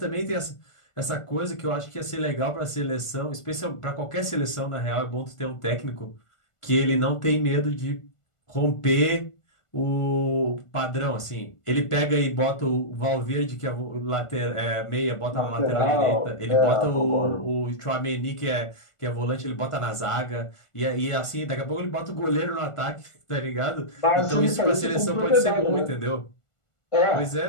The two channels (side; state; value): right; late; 1.4 ms